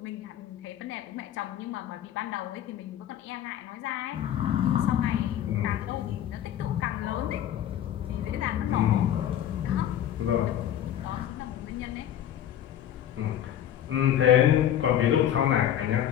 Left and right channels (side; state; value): right; quieter; 10.8 dB